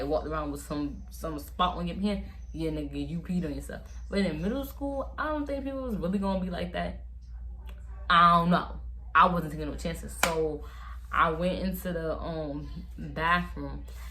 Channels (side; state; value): both; identical; correlation 1.00